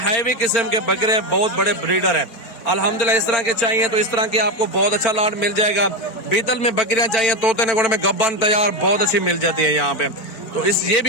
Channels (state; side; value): late; right; 4.4 ms